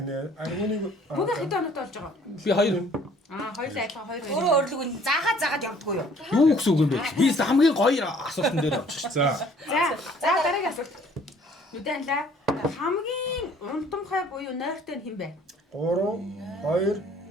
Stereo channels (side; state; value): both; normal; correlation 0.57